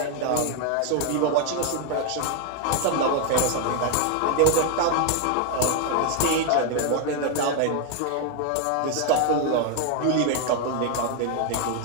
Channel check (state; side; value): different; both; correlation 0.01